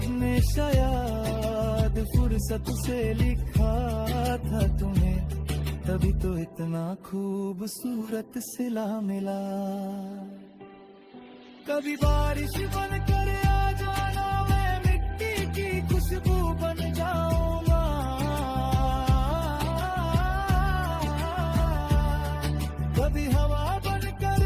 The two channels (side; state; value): both; identical; correlation 1.00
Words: ने शायद फुर्सत से लिखा था तुम्हें, तभी तो इतना खूबसूरत सिला मिला। कभी बारिश बनकर आ जाना, मैं मिट्टी की खुशबू बन जाऊंगा। कभी हवा बनकर